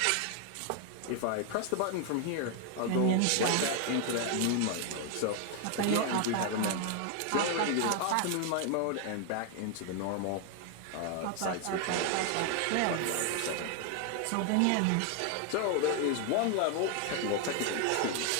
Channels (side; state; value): both; different; correlation 0.00